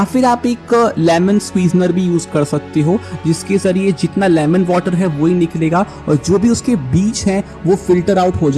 फिर आप एक लेमन स्क्वीजनर भी यूज़ कर सकते हो, जिसके ज़रिए जितना लेमन वाटर है वही निकलेगा और जो भी उसके बीज हैं वो फिल्टर आउट हो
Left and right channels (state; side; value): identical; both; correlation 1.00